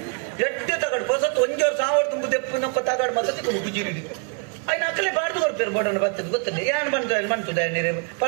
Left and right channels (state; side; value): quieter; left; 38.9 dB